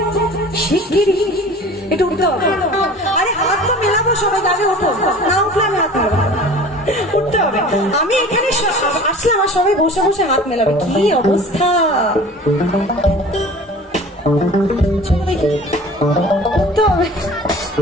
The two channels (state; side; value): normal; both; correlation 0.42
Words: একটু উঠতে হবে। আরে হাত তো মেলাবো সবাই, আগে ওঠো, না উঠলে আমি হাত মেলাবো। উঠতে হবে। আমি এখানে আসলাম আর সবাই বসে বসে হাত মেলাবে, কি অবস্থা। চলো দেখি, উঠতে হবে।